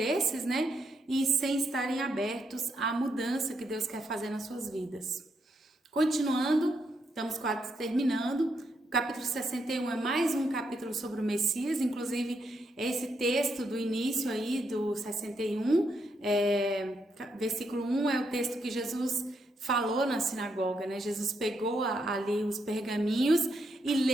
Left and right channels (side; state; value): both; normal; correlation 0.79